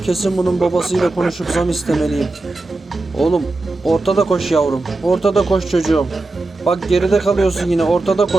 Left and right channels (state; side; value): quieter; left; 3.1 dB